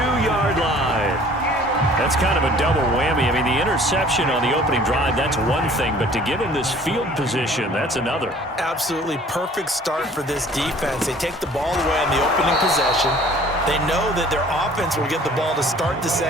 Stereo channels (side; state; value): both; normal; correlation 0.51